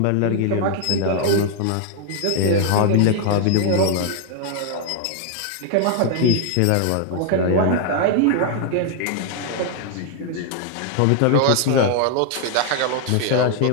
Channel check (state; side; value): different; both; correlation 0.01